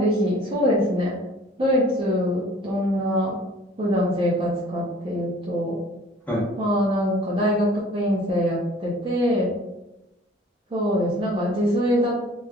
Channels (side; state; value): both; normal; correlation 0.50